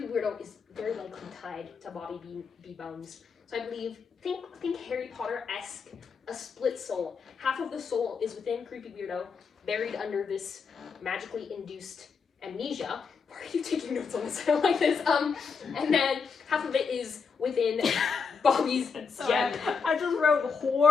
Weirdo is very likely tied to Bobby B. Bones. So I believe, think Harry Potter-esque, a split soul. Half of the soul is within Creepy Weirdo, buried under this magically induced amnesia. Why are you taking notes on this? I don't like this. And then half of it is within Bobby's Sorry, gem. I just wrote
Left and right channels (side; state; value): right; quieter; 5.6 dB